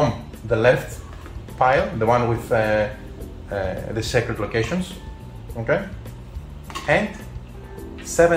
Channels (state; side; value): identical; both; correlation 1.00